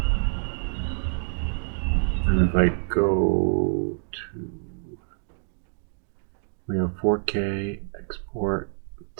And if I go to, we have 4K, export,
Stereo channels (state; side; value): silent; left; digital silence